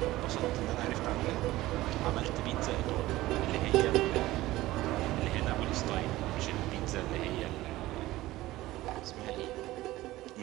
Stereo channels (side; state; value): left; quieter; 17.1 dB